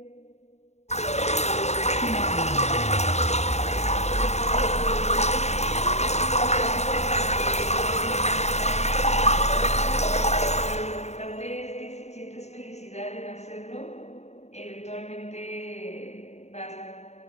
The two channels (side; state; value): right; late; 0.32 ms